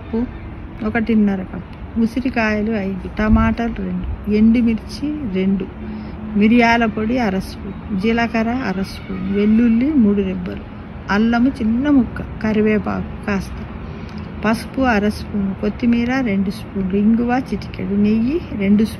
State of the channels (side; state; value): both; identical; correlation 1.00